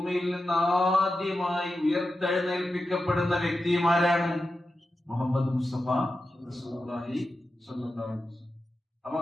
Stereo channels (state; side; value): normal; both; correlation 0.91